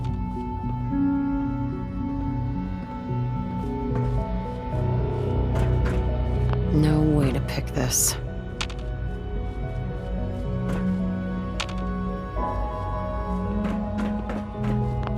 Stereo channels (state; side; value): identical; both; correlation 1.00